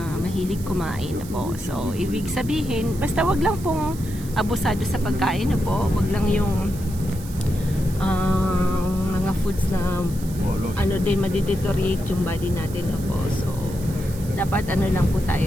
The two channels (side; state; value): right; noise; hiss, 17 dB below the sound